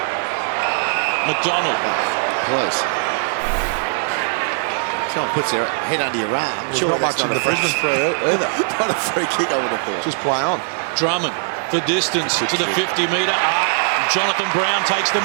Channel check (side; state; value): left; silent; digital silence